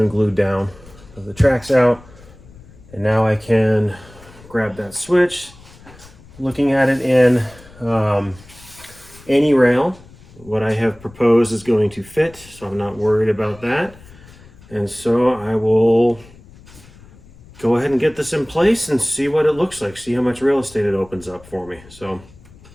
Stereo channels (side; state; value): left; noise; rumble, 23 dB below the sound